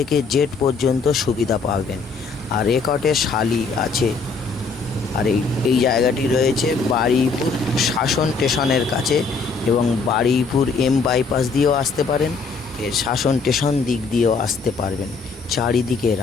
জেড পর্যন্ত সুবিধা পাবেন। আর রেকর্ডে শালি আছে। আর এই জায়গাটি রয়েছে বারুইপুর শাসন স্টেশনের কাছে, এবং বারুইপুর এম বাইপাস দিয়েও আসতে পারেন, এর শাসন স্টেশন দিক দিয়েও আসতে পারবেন, চারিদিকে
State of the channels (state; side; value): quieter; right; 4.6 dB